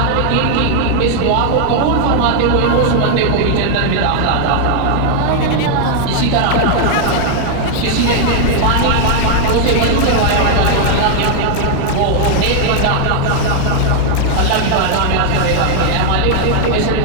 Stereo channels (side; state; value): both; different; correlation 0.00